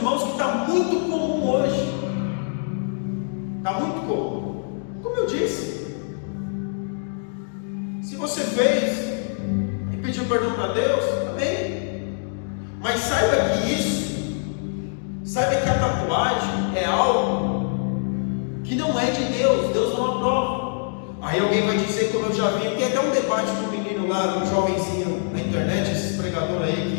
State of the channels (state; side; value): silent; right; digital silence